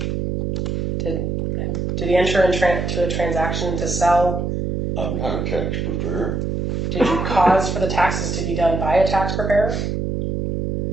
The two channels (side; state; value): right; noise; hum, 1 dB below the sound